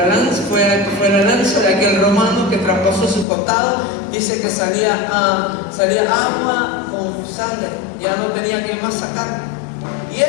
lanza de aquel romano que traspasó su costado, dice que salía agua con sangre, ya no tenía que más sacar. Y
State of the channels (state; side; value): drops out; right; at 3.2 s